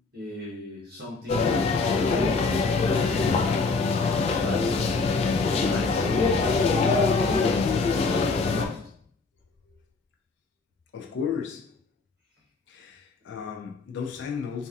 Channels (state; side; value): quieter; right; 4.0 dB